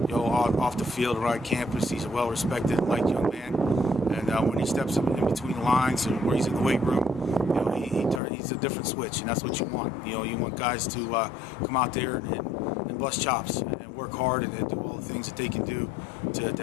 Off the field, around campus, he's a well-respected and liked young man. And when he steps in between the lines and where he's in the weight room, he's a different switch, and that's what you want. You want guys to come out there and bust chops and work hard and do all the things that they can do to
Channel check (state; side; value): drops out; right; at 8.2 s